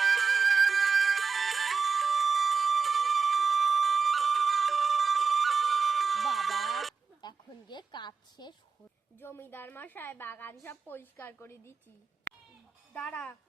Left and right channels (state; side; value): quieter; left; 5.2 dB